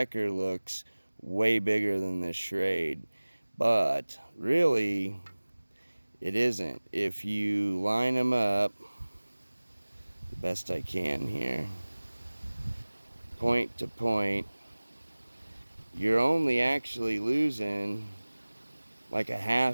looks way bigger than the Schrade, but really it isn't. If you line them up the best I can here, point to point, you're only actually losing like a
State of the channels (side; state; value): both; inverted; correlation -1.00